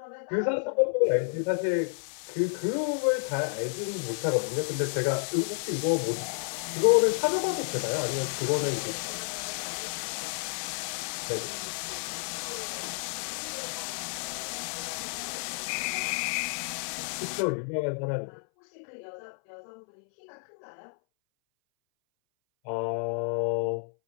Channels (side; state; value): right; silent; 58 dB below the other